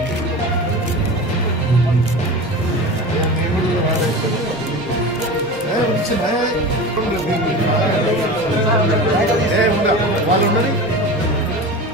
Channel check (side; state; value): both; normal; correlation 0.30